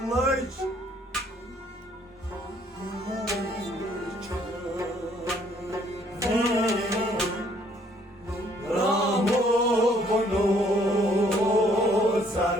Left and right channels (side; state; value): both; normal; correlation 0.63